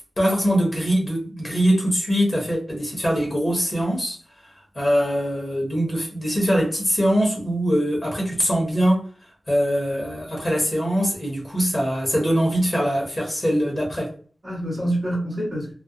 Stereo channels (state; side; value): normal; both; correlation 0.95